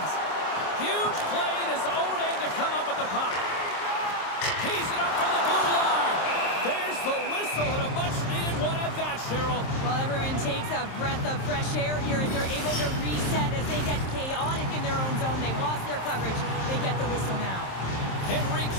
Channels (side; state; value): right; late; 27 ms